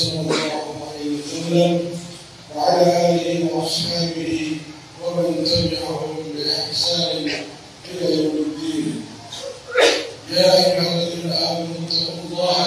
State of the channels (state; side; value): identical; both; correlation 1.00